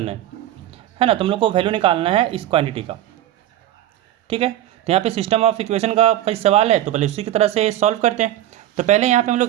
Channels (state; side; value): quieter; left; 13.0 dB